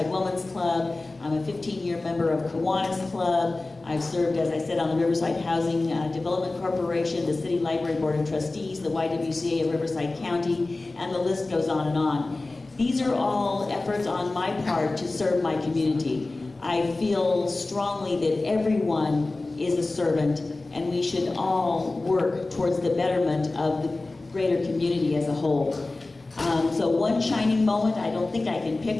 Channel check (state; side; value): quieter; right; 3.2 dB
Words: Women's Club. I'm a 15-year member of Kiwanis Club. I've served, as I said, on the Riverside Housing Development Corporation, the City Library Board of Trustees, the YWCA of Riverside County, and the list goes on and on. These are all efforts on my part to serve my community. I feel strongly that everyone is a servant, and we should all work towards the betterment of the greater community as a whole. So one shining moment, I don't think I can